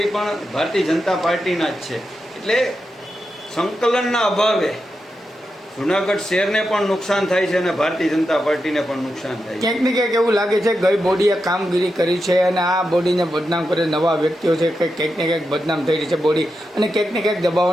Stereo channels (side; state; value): both; normal; correlation 0.88